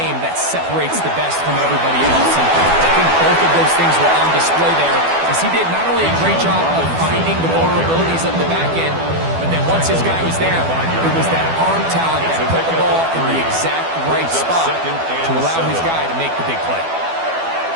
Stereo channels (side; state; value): left; late; 12 ms